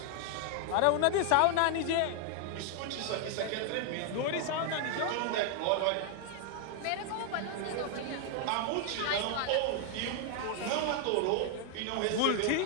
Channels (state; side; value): different; both; correlation 0.00